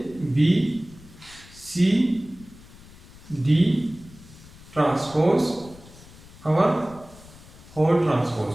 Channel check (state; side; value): noise; left; rumble, 21 dB below the sound